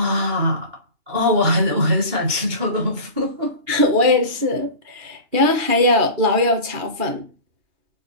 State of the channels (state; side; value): late; left; 2.8 ms